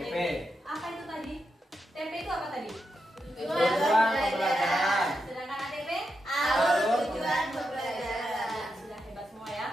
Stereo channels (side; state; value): both; normal; correlation 0.86